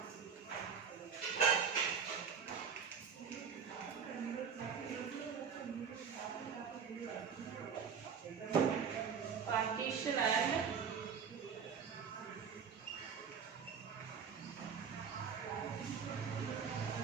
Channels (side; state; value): left; quieter; 6.8 dB